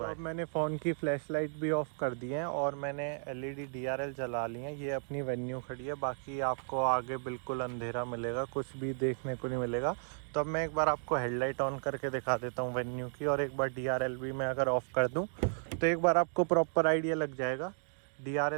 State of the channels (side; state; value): left; silent; 55 dB below the other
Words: है। मैंने फ़ोन की फ्लैश लाइट भी ऑफ कर दी है और मैंने LED DRL जला ली है। ये अपनी वेन्यू खड़ी है, बाकी आपको आगे बिल्कुल अंधेरा मिलेगा, कुछ भी देखने को नहीं मिलेगा। तो अब मैं एक बार आपको हेडलाइट ऑन करके दिखा देता हूँ वेन्यू की, और एक बार DRL भी मैं अगर ऑफ कर दूँ तो एक बार आपको प्रॉपर आइडिया लग जाएगा।